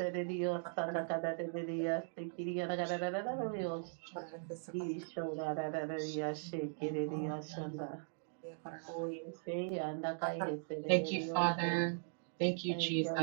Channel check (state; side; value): silent; left; digital silence